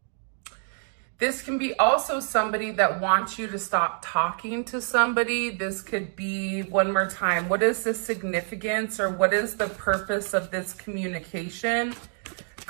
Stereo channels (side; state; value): left; silent; 56 dB below the other